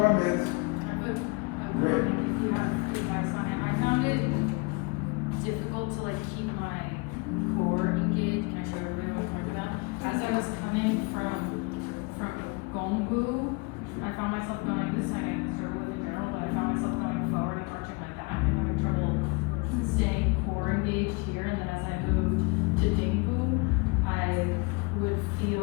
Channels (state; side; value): quieter; right; 29.1 dB